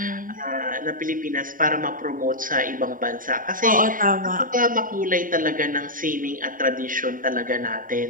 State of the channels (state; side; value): late; left; 0.39 ms